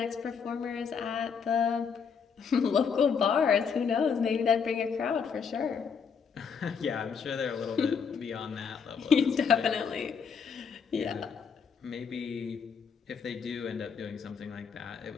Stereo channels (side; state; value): right; quieter; 6.2 dB